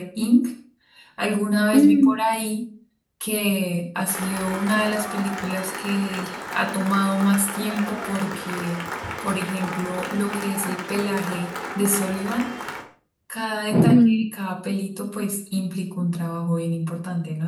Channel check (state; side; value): identical; both; correlation 1.00